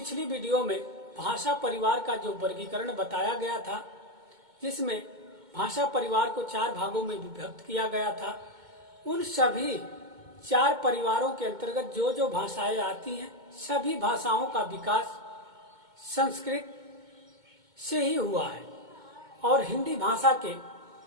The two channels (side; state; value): left; late; 2.2 ms